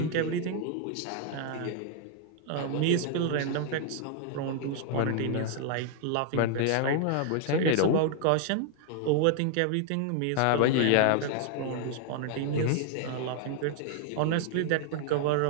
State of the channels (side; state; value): both; different; correlation 0.00